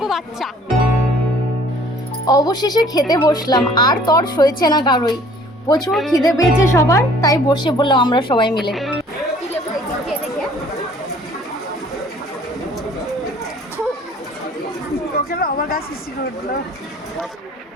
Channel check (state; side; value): normal; both; correlation 0.54